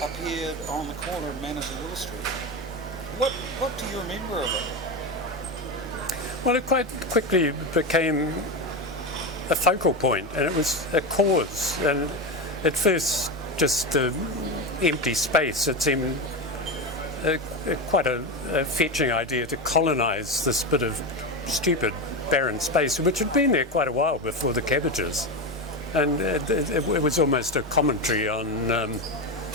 appeared on the corner of Manners and Willow Street. What do you remember of it? Well, it quite quickly became a focal point, and it was a cause. And at first, just an empty space. It seemed quite a fetching idea to colonise this bit of stupid barren space, which had been there quite a while before the Cabbages. And it was almost a commentary on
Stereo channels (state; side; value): normal; both; correlation 0.17